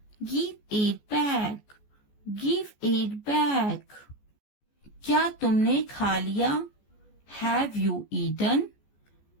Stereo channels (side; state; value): right; late; 14 ms